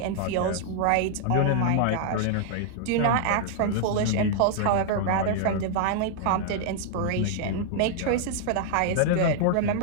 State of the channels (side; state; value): both; different; correlation -0.01